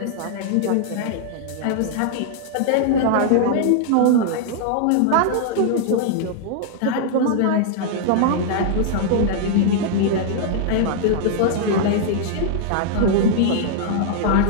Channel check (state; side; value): different; both; correlation -0.01